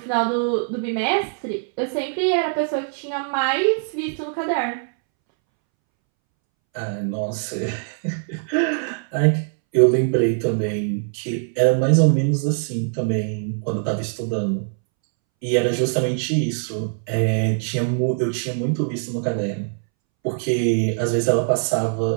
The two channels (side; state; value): left; silent; 64 dB below the other